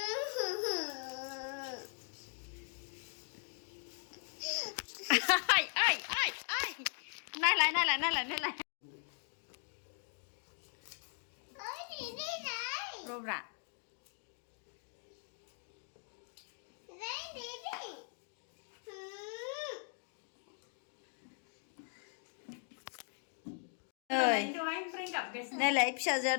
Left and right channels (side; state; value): right; silent; 51 dB below the other